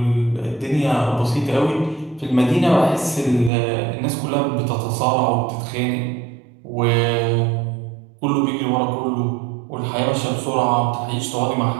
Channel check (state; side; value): drops out; left; at 3.5 s